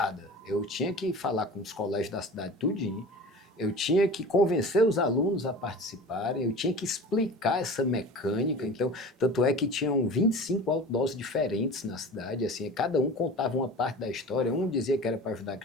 Eu tinha que falar com os colégios da cidade tudinho, eu tinha que convencer os alunos a participarem, eu tinha que explicar essa mecânica. Então, tanto é que tinham 25 outdoors diferentes na cidade, assim, cada um contava uma parte da história. Um dizia que era para ajudar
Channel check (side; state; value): both; normal; correlation 0.37